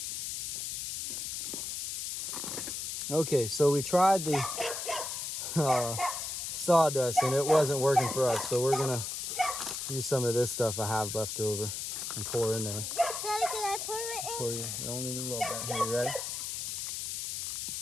Okay, so we tried the sawdust and it wasn't working for us, so we're gonna use some of this stuff I have left over and pour in there. Daddy, can I pour it in? Pour you only a little bit. Here, you ready?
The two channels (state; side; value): noise; left; hiss, 4 dB below the sound